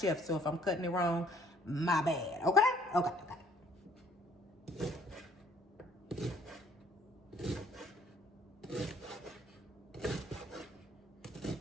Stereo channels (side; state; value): both; normal; correlation 0.60